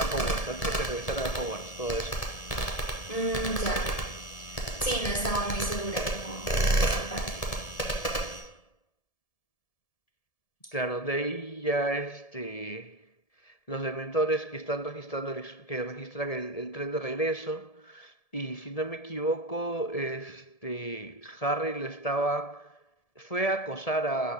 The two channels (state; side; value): late; right; 1.7 ms